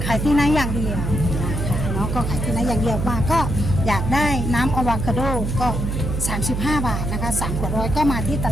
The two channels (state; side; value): noise; right; hum, 2 dB below the sound